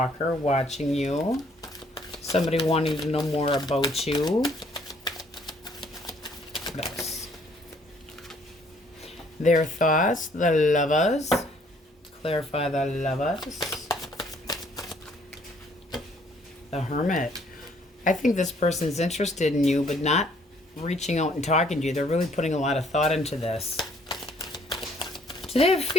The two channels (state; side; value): normal; both; correlation 0.63